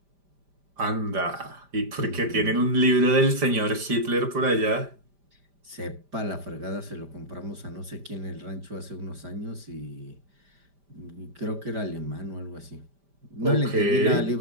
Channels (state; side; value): late; left; 5.0 ms